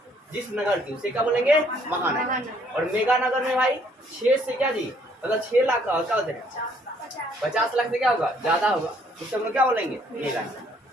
जिस नगर की, उसे क्या बोलेंगे? महानगर। और मेगा नगर में भाई 6 से क्या जी, मतलब 6 लाख क्या होते हैं, 50 लाख से क्या होगा, ज्यादा होगा, उससे हम लोग क्या बोलेंगे? मेगा नगर।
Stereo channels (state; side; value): normal; both; correlation 0.64